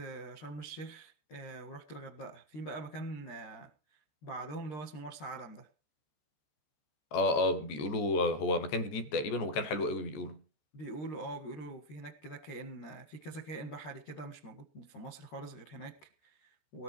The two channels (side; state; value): right; late; 14 ms